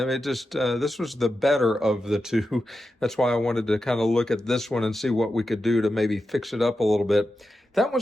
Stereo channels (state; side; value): normal; both; correlation 0.90